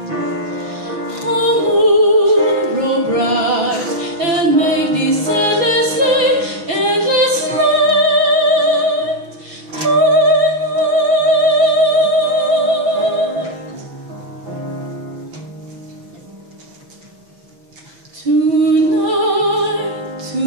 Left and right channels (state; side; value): late; left; 6.2 ms